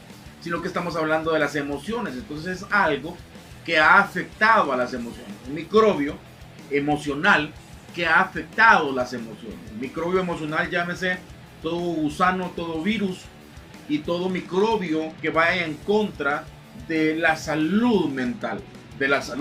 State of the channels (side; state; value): both; identical; correlation 1.00